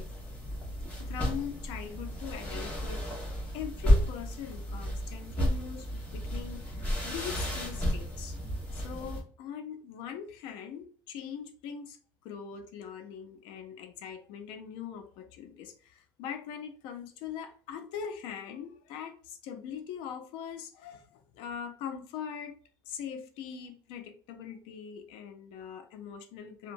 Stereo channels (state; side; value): normal; both; correlation 0.71